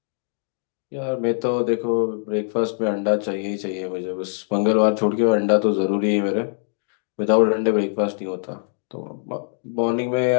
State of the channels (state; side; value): silent; right; digital silence